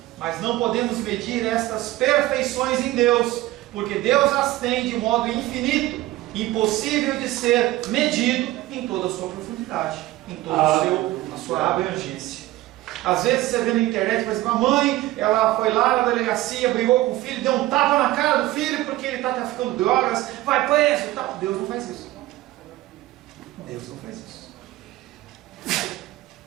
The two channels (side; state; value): left; quieter; 16.8 dB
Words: mas não podemos medir estas perfeições em Deus, porque Deus as tem de modo infinito, impossível de ser medido em toda a sua profundidade, em toda a sua abrangência. Às vezes você vê na internet, por exemplo, a mãe, ela foi lá na delegacia, brigou com o filho, deu um tapa na cara do filho porque ele está traficando drogas, vai preso e tal. Deus não faz isso. Deus não faz isso.